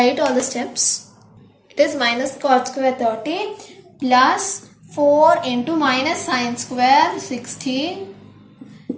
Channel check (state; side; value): identical; both; correlation 1.00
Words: all the steps. It is minus cot square 30 plus 4 into minus sine square 60